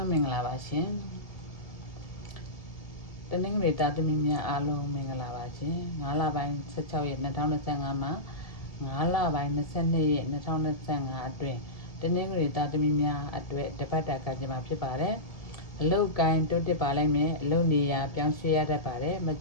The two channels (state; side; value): late; right; 1.7 ms